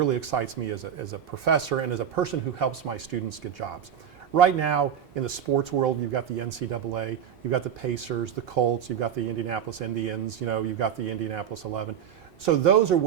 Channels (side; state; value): left; quieter; 9.0 dB